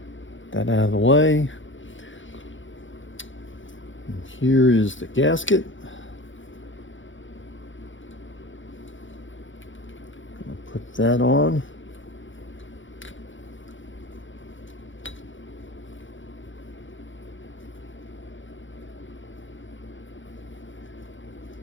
That out of the way. And here is the gasket. I'll put that on.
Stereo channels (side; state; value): right; late; 0.56 ms